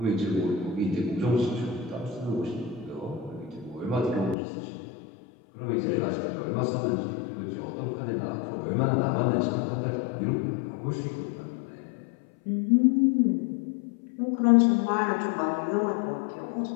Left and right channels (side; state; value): right; drops out; at 4.4 s